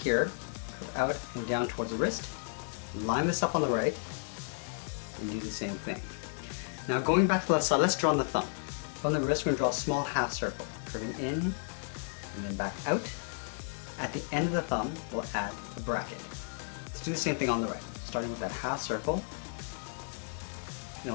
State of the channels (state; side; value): silent; right; digital silence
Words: curve out and down towards the wrist, line this up on the right, and do the same thing. Now going back to the left side, let's draw on the thumb. From the wrist, we're going to draw a small half circle, curving in and then back out. At the end of the thumb, we'll add a bracket. Let's do the same thing on the right, starting with that half circle, and